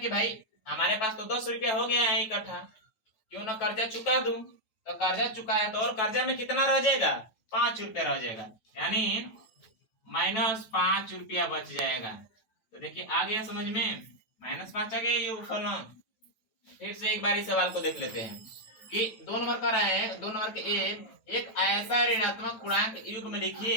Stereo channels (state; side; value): late; right; 9.2 ms